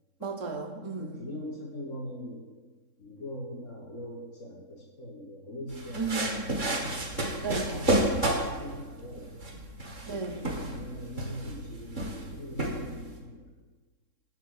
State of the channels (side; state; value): right; late; 3.7 ms